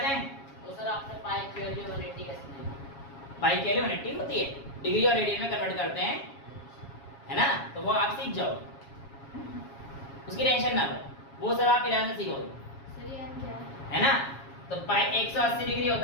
तो सर आपने पाई की वैल्यू 180 कैसे दी? पाई के लिए 180 होती है, डिग्री और रेडियन में कन्वर्ट करते हैं, है ना, तो वो आप सीख जाओ, उसकी टेंशन ना लो, वो सब आप 11 से सीखोगे, सर ये n क्या है ना। तो पाई 180 डिग्री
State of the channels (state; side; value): late; right; 7.3 ms